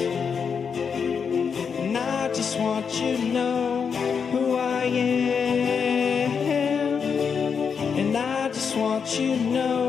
And I just want you to know who I am. Want you to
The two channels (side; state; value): right; quieter; 6.3 dB